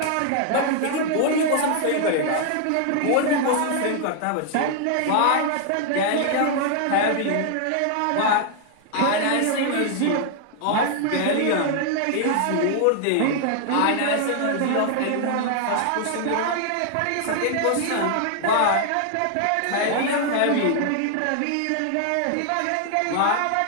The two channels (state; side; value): different; both; correlation 0.00